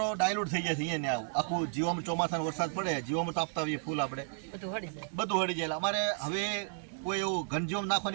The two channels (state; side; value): silent; left; digital silence